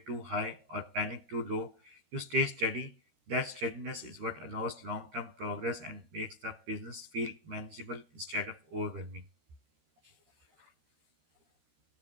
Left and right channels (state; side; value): late; left; 13 ms